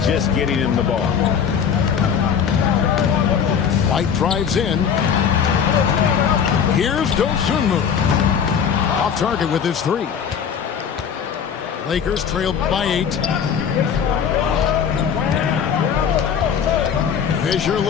just getting him the ball. White drives in. Here's Dosunmu. Off target with his three. Lakers trailed by 8. Fisher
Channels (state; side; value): quieter; right; 7.4 dB